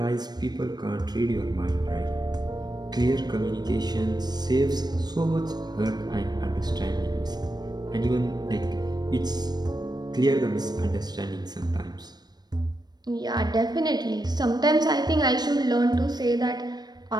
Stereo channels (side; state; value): left; late; 0.20 ms